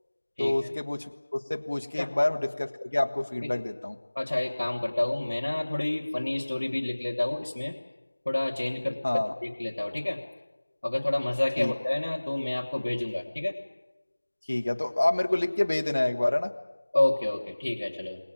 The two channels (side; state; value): both; inverted; correlation -1.00